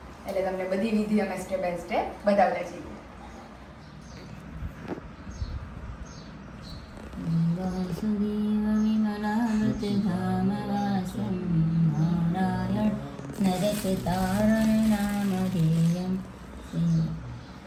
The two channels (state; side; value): identical; both; correlation 1.00